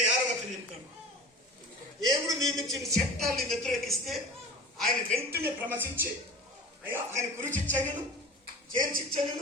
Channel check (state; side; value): normal; both; correlation 0.36